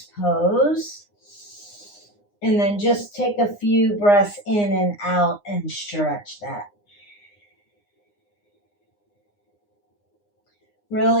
pose. And then just take a few breaths in and out and stretch that.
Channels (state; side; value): late; right; 9.7 ms